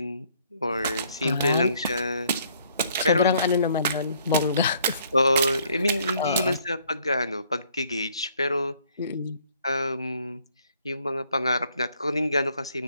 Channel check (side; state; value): both; inverted; correlation -0.64